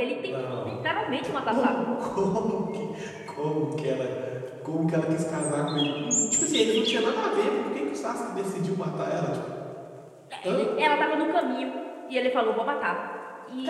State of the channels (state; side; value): identical; both; correlation 1.00